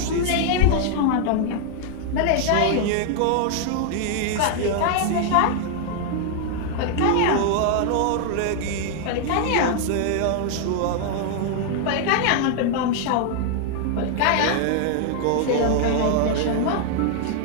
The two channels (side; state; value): both; different; correlation 0.00